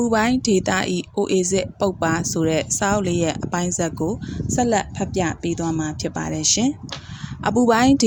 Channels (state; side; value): identical; both; correlation 1.00